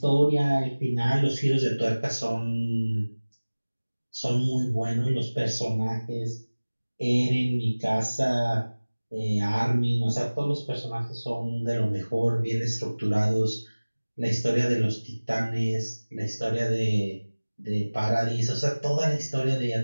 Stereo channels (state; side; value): inverted; both; correlation -1.00